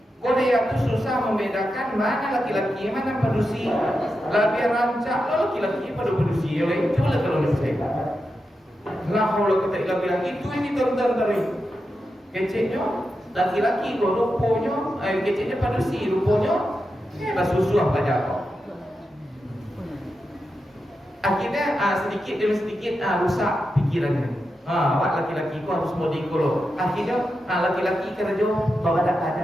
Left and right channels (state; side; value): normal; both; correlation 0.88